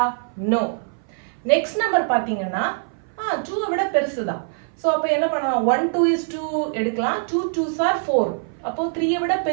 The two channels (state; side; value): silent; left; 58 dB below the other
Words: நோ. நெக்ஸ்ட் நம்பர் பார்த்தீங்கன்னா 2 விட பெருசு தான். ஸோ அப்போ என்ன பண்ணலாம், 1 2 is 2 எடுக்கலாம், 2 2s are 4. அப்போ 3 விட